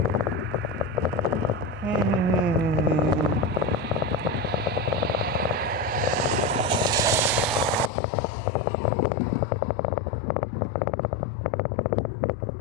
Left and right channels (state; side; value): drops out; right; at 7.9 s